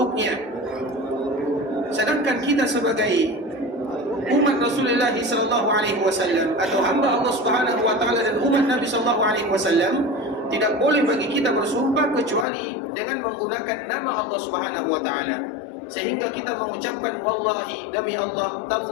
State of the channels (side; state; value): right; drops out; at 12.5 s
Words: Sedangkan kita sebagai umat Rasulullah sallallahu alaihi wasallam atau hamba Allah Subhanahu wa taala dan umat Nabi sallallahu alaihi wasallam, tidak boleh bagi kita bersumpah kecuali dengan menggunakan nama Allah Subhanahu wa taala. Sehingga kita mengucapkan wallahi, demi Allah,